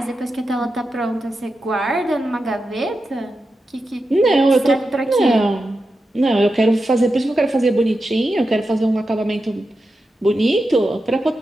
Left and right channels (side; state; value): both; normal; correlation 0.90